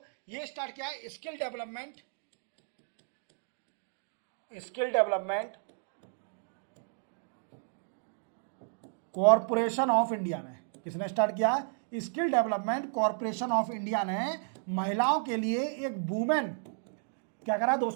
ये स्टार्ट किया है skill development corporation of India ने। किसने स्टार्ट किया? Skill development corporation of India ने महिलाओं के लिए एक वुमेन, क्या करा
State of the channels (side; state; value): left; silent; digital silence